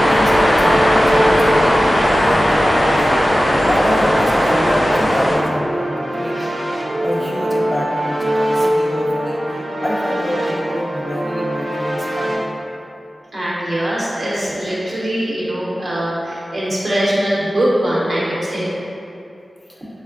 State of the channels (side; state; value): both; normal; correlation 0.95